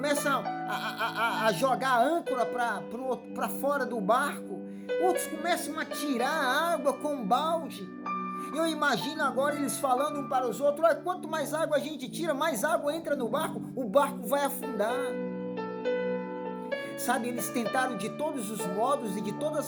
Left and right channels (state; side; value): identical; both; correlation 1.00